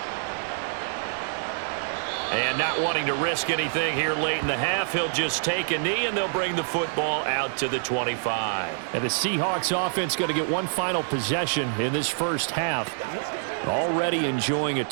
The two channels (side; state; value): left; silent; digital silence